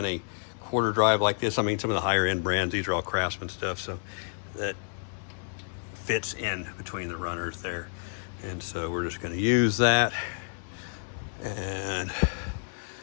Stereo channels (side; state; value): right; silent; digital silence